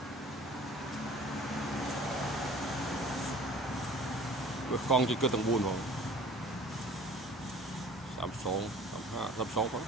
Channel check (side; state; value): both; normal; correlation 0.47